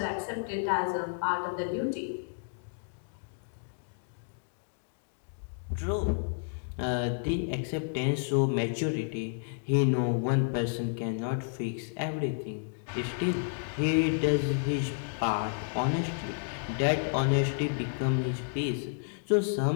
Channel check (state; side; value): silent; right; digital silence